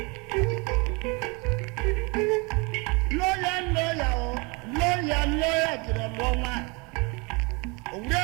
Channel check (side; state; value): left; quieter; 29.2 dB